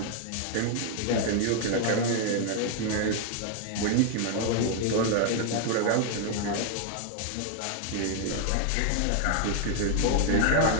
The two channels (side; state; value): both; different; correlation 0.00